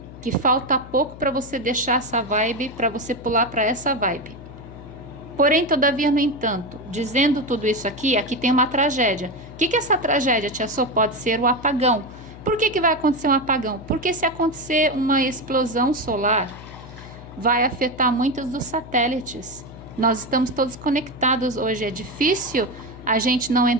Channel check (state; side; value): noise; left; hum, 16 dB below the sound